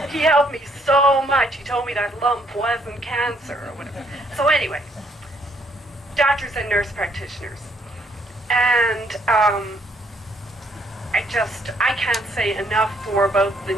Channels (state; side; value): normal; both; correlation 0.69